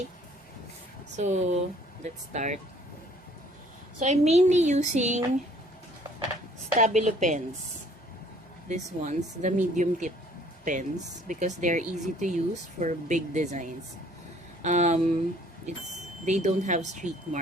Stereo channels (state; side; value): normal; both; correlation 0.58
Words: So, let's start. So, I'm mainly using Stabilo pens. These ones, the medium tip pens, because they're easy to use for big designs. They don't have streak